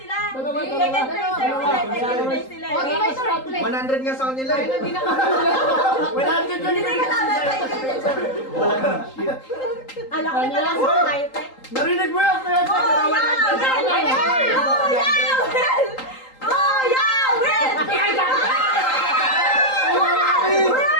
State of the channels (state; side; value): late; right; 3.8 ms